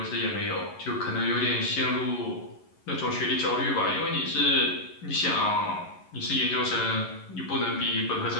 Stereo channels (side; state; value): right; late; 11 ms